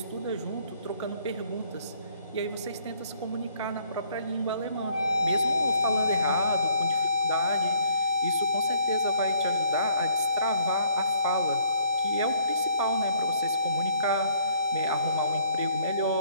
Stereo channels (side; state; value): both; inverted; correlation -0.63